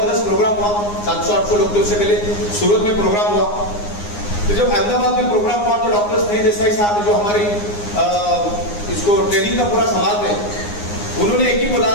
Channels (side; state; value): right; late; 9.7 ms